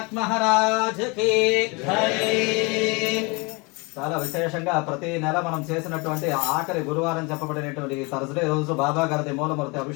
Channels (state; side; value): quieter; right; 28.5 dB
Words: మహారాజ్ కి జై. చాలా విశేషంగా ప్రతి నెల మనం చేసినటువంటి ఆఖరి గురువారం చెప్పబడినటువంటి థర్స్డే రోజు బాబా గారి మూలమూర్తి